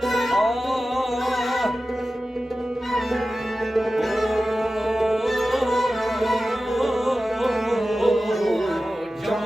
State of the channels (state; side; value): normal; both; correlation 0.94